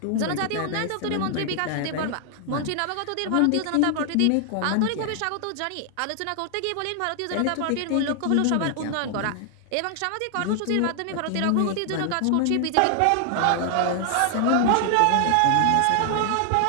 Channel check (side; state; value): both; different; correlation 0.00